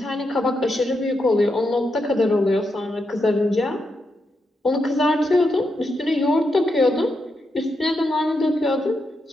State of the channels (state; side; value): normal; both; correlation 0.84